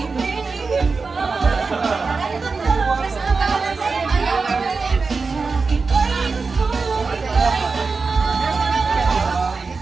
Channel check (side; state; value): left; quieter; 4.4 dB